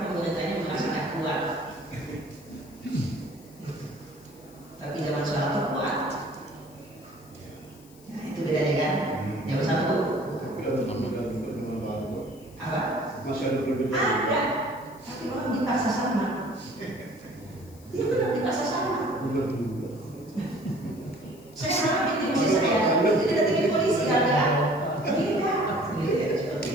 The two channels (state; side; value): noise; left; hiss, 25 dB below the sound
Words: pemerintahnya merasa nggak kuat. Tapi zaman Soeharto kuat. Nah itu bedanya kan. Zaman Soeharto apa? Masih ada perbedaan. Ada. Tapi orang dipaksa sama. Dia benar dipaksa sama. Saya sama bikin polisi saya. Itu tidak bikin polisi kan?